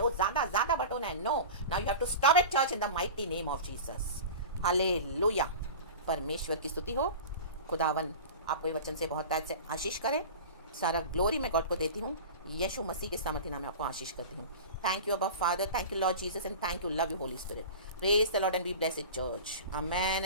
वो ज़्यादा बटोना है। No, now you have to stop it church in the mighty name of Jesus. Hallelujah. परमेश्वर की स्तुति हो। खुदावन आपको ये वचन से बहुत ताज से आशीष करे। सारा ग्लोरी मैं गॉड को देती हूँ, यीशु मसीह के सामर्थ्य नाम में आपको आशीष करती हूँ। थैंक यू अबा father, thank you Lord Jesus and thank you, love you Holi spirit. Praise the Lord and be blessed church. Amen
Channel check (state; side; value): inverted; both; correlation -0.33